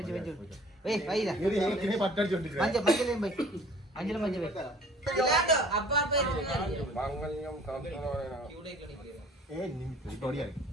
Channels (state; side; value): normal; both; correlation 0.51